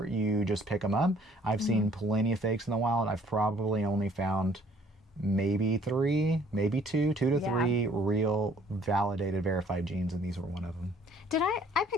you just pick them up. I've seen plenty of fakes in the wild. I've probably only found maybe two to three real validated verified jeans, and these were one of them. Did I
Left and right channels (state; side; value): normal; both; correlation 0.59